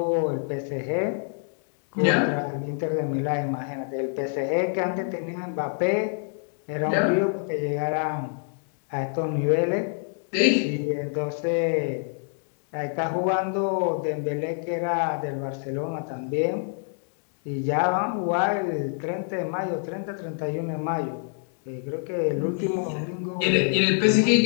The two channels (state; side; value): silent; right; 56 dB below the other